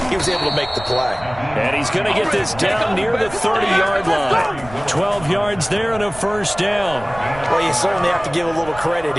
he was able to make the play. And he's going to get this down near the 30-yard line. 12 yards there and a first down. Well, you certainly have to give a little credit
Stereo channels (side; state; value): right; noise; rumble, 17 dB below the sound